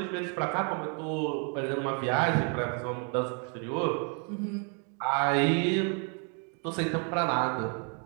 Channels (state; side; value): quieter; left; 39.8 dB